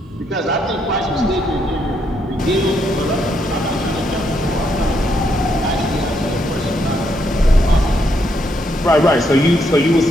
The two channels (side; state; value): both; normal; correlation 0.76